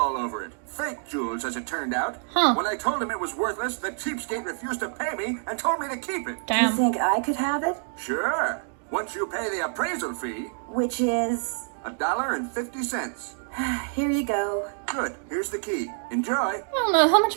over it. Fake jewels, as it turned out. Huh. When I told him it was worthless, the cheapskate refused to pay me and told me to keep it. Do you Damn. think I could have it? Sure. Once you pay the appraisal fee, Which is... $1.50. Here you go. Good, here's the key. Enjoy. I don't know, how much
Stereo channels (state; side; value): silent; left; 60 dB below the other